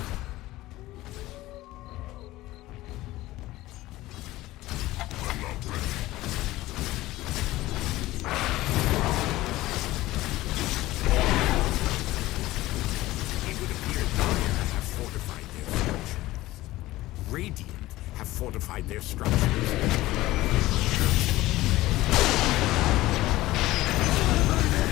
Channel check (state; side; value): quieter; right; 17.3 dB